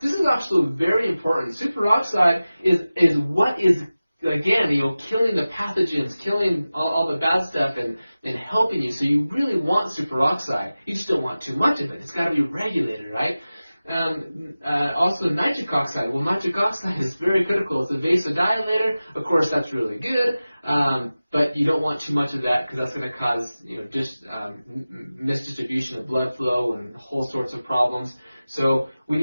is actually very important. Superoxide is what is, again, killing the pathogens, killing all the bad stuff, and helping you. So you really want superoxide. You just don't want too much of it. It's got to be regulated, right? Also nitric oxide. Well, nitric oxide is very critical. It's a vasodilator. Of course, that's really good, but you don't want too much of that because that's going to cause misdistribution of blood flow and whole sorts of problems. So we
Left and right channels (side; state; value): both; inverted; correlation -0.96